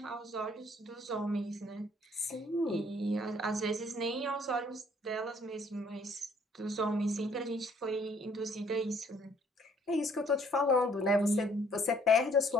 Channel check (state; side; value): normal; both; correlation 0.62